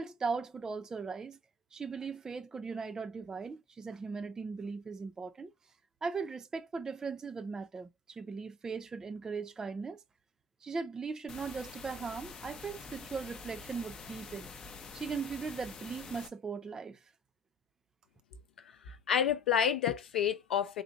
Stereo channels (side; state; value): both; normal; correlation 0.49